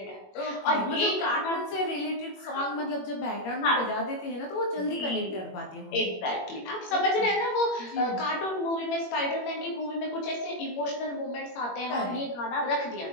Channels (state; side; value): late; right; 21 ms